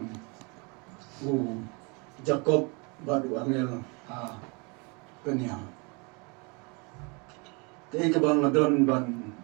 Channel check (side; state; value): left; quieter; 30.7 dB